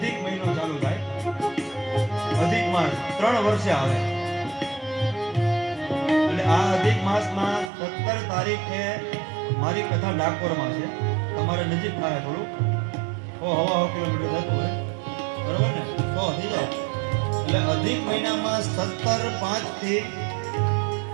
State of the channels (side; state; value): left; drops out; at 7.7 s